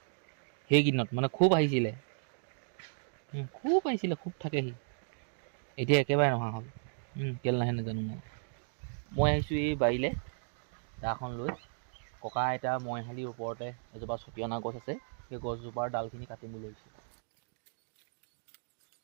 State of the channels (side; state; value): left; silent; digital silence